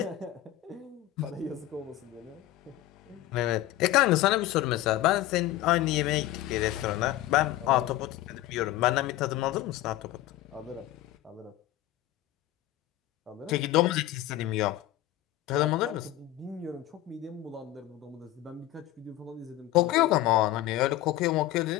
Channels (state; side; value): quieter; right; 14.5 dB